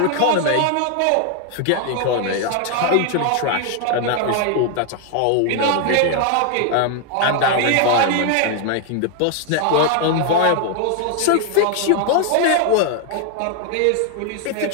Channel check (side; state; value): both; different; correlation 0.00